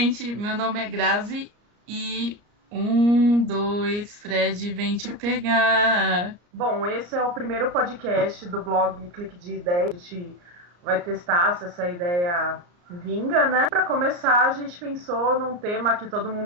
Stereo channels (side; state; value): left; late; 34 ms